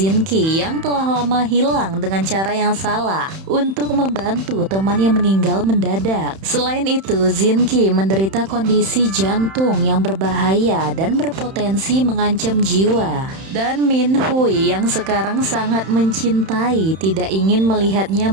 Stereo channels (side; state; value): left; late; 31 ms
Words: Ki yang telah lama hilang dengan cara yang salah untuk membantu teman yang meninggal mendadak. Selain itu, Jin Ki menderita kondisi jantung yang berbahaya dan berpotensi mengancam jiwa. Dan Min Hui yang sekarang sangat mencintai tidak ingin melihatnya